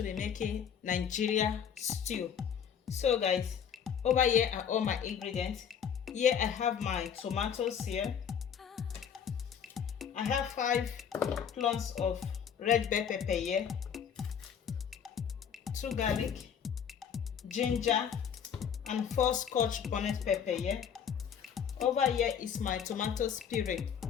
be making Nigeria stew. So guys, over here are all my ingredients. Here I have my tomatoes here. I have 5 clones of red bell pepper here, 2 garlic, ginger, and 4 scotch bonnet pepper here. Over here is my tomato puree.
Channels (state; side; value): quieter; right; 7.9 dB